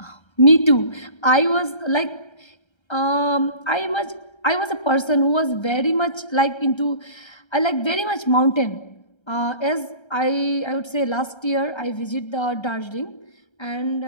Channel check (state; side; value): late; right; 1.3 ms